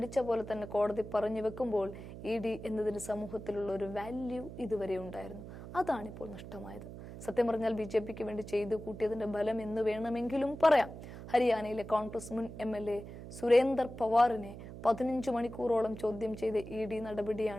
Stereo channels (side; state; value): right; noise; hum, 12 dB below the sound